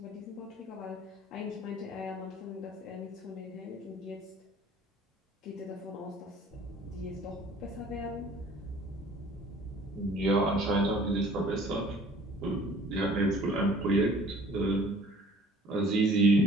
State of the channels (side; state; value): both; normal; correlation 0.52